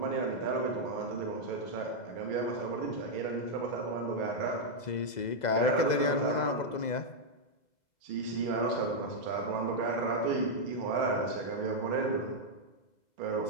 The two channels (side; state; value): right; late; 2.0 ms